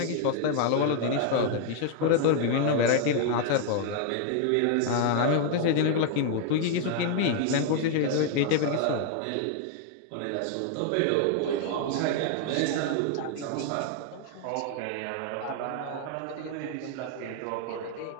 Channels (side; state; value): both; different; correlation 0.00